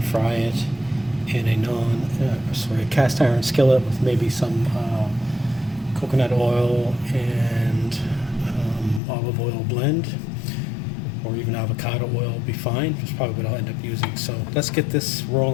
fry it in a cast iron skillet with maybe some coconut oil and olive oil blend, or even avocado oil will be fine. That's probably what I'll end up using. So let's get this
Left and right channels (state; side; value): drops out; right; at 9.0 s